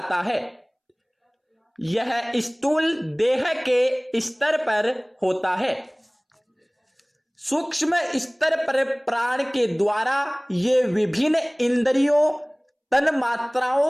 है। यह स्थूल देह के स्तर पर होता है। सूक्ष्म स्तर पर प्राण के द्वारा ये विभिन्न इंद्रियों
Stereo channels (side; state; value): both; identical; correlation 1.00